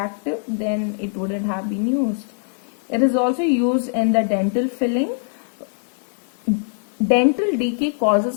then it wouldn't have been used. It is also used in the dental filling. Dental decay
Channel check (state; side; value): silent; right; digital silence